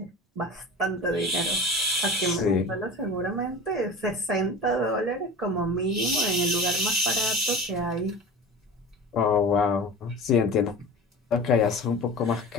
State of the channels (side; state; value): both; normal; correlation 0.35